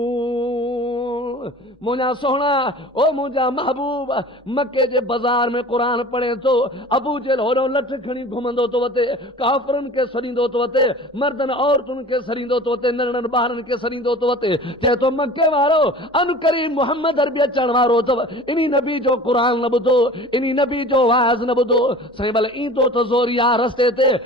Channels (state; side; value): normal; both; correlation 0.41